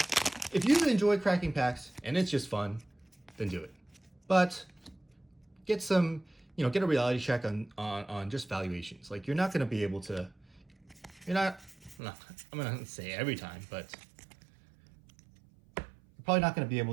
If you enjoy cracking packs and it's just fun, then do it. But get some, get a reality check on just valuations. Like, you're not going to be able to, I'm going to say every time, but you're probably not going to be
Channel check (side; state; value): left; drops out; at 12.0 s